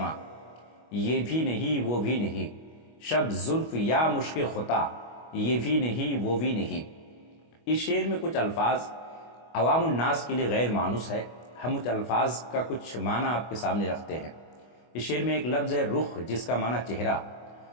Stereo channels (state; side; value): late; right; 25 ms